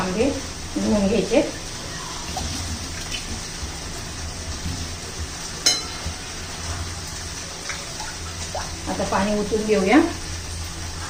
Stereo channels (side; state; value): both; identical; correlation 1.00